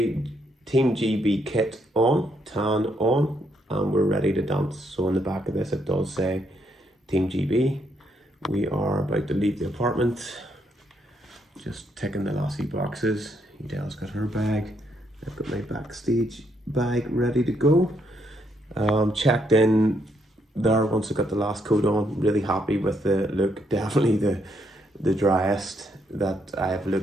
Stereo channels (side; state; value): both; normal; correlation 0.75